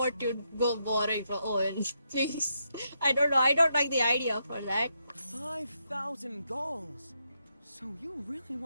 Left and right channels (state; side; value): inverted; both; correlation -0.81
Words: to go borrowing for Owen. Please. I don't know. I don't like the idea for that. 5,000 goals. So you really